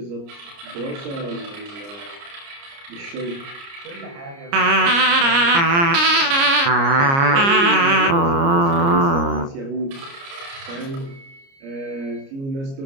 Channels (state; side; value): late; left; 29 ms